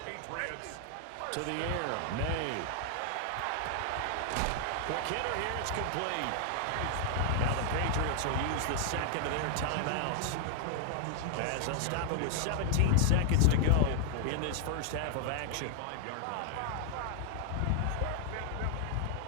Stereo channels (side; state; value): both; different; correlation 0.00